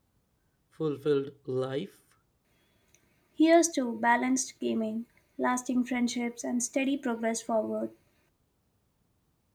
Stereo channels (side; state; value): both; identical; correlation 1.00